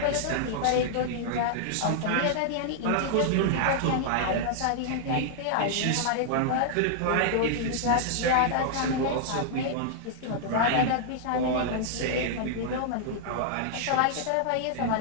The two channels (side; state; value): both; different; correlation -0.01